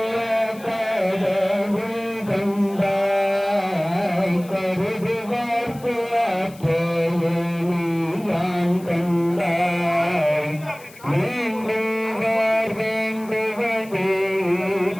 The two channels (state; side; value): noise; left; hiss, 22 dB below the sound